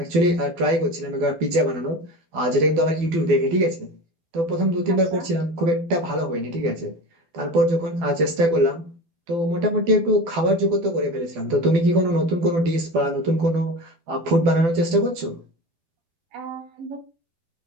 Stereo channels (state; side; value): late; left; 12 ms